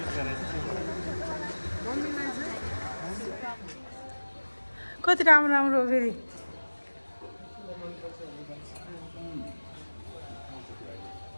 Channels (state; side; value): inverted; both; correlation -1.00